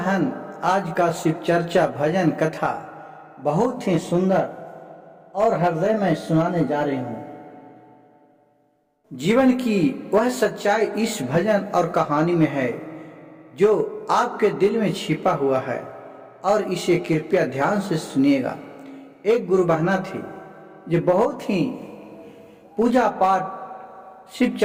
आज का शिव चर्चा भजन कथा बहुत ही सुंदर और हृदय में सुनाने जा रही हूँ। जीवन की वह सच्चाई इस भजन और कहानी में है जो आपके दिल में छिपा हुआ है, और इसे कृपया ध्यान से सुनिएगा। एक गुरु बहना थी जो बहुत ही पूजा पाठ, शिव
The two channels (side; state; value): both; identical; correlation 1.00